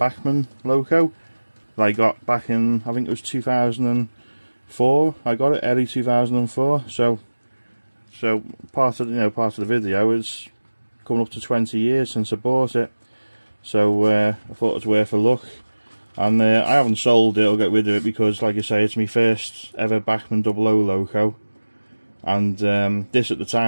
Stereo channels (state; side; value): inverted; both; correlation -1.00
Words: loco that I got back in, I think it was 2004. I got it early 2004. So part of the video is coming up to 20 years since I bought it. So I thought it was worth a look. And I haven't sold it or got rid of it because, like I say, it's my first ever Bachmann 00 loco. And this at the